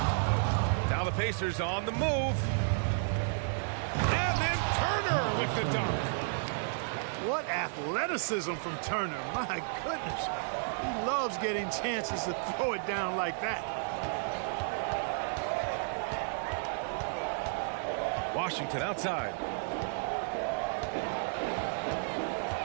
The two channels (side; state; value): left; silent; 56 dB below the other